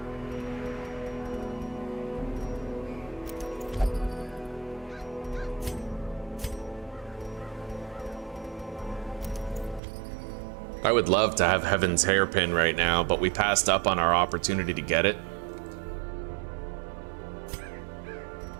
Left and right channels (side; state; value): left; drops out; at 9.8 s